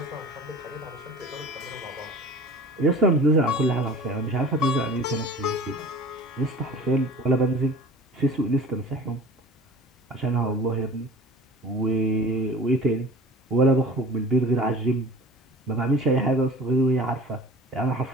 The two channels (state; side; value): normal; both; correlation 0.41